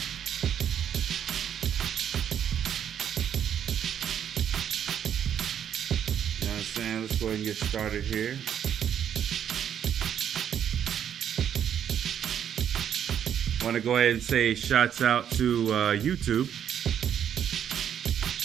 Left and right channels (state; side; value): quieter; left; 9.2 dB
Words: You know what I'm saying? Let's go ahead and get started here. Want to go ahead and say shouts out to YouTube.